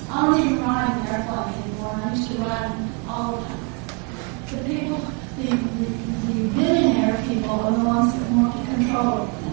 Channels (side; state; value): left; quieter; 34.7 dB